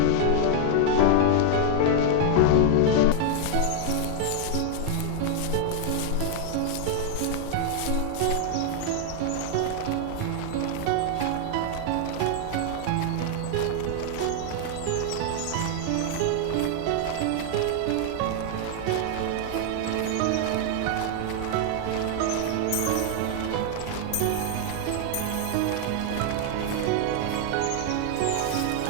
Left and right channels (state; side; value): different; both; correlation 0.00